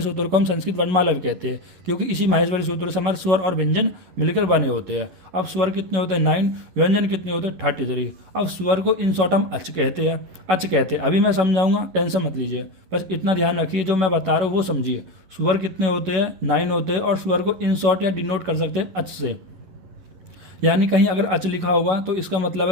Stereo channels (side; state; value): left; late; 11 ms